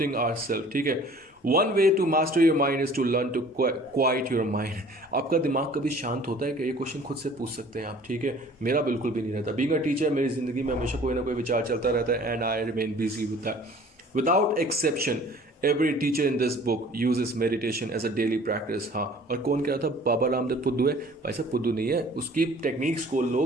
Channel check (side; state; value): both; normal; correlation 0.50